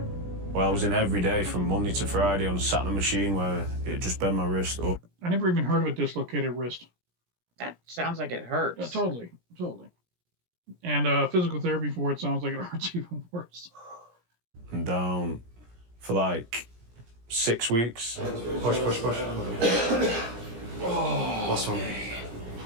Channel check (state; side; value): late; left; 17 ms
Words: Well, I was in every day from Monday to Friday on a sat in a machine where it just bent my wrist up. I never even heard of a dislocated wrist. That sounds like it hurts. Yeah, totally. And physical therapy for it sounds like it hurts even worse. I'm down for like 6 weeks. Push. Last one.